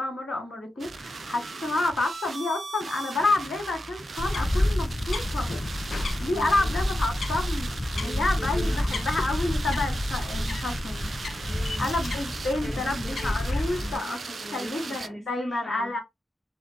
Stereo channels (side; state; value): both; normal; correlation 0.90